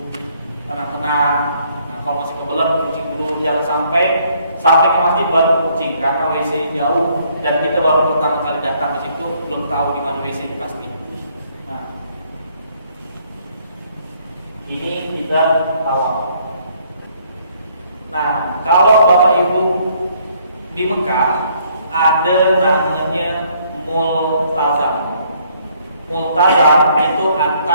tenang-tenang. Nah, kalau masih kebelet kencing dulu, jangan sampai ke masjid baru kencing karena WC jauh dan kita baru pertama kali datang ke situ belum tahu di mana WC ini pasti. Ini kita tawaf. Nah, kalau Bapak Ibu di Mekah ada namanya multazam. Multazam itu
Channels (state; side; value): inverted; both; correlation -0.66